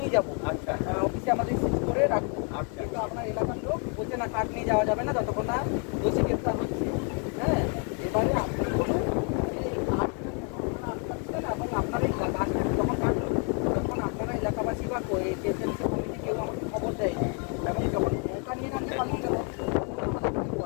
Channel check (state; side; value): quieter; right; 39.0 dB